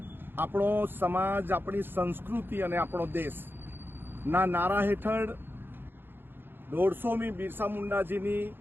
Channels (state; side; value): late; left; 0.10 ms